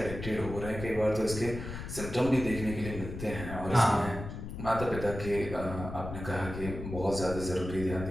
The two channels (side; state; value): left; noise; rumble, 8 dB below the sound